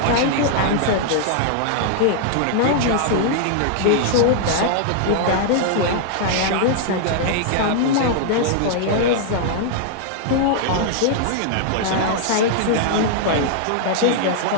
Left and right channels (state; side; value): different; both; correlation -0.01